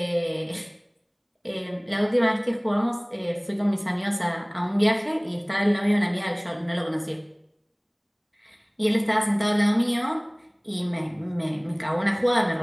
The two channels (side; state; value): both; identical; correlation 1.00